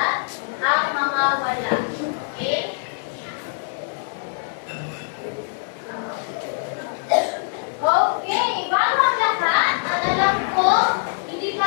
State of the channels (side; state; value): right; silent; digital silence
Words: ang mga wala. Okay? Okay, bago ang lahat, ang alam ko, hindi